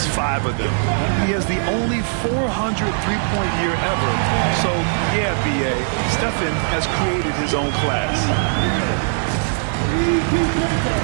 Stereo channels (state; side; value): silent; left; 66 dB below the other